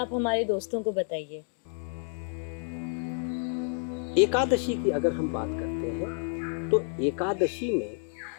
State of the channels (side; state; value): right; silent; 58 dB below the other